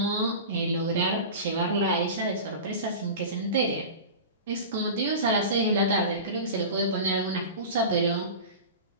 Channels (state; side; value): inverted; both; correlation -0.31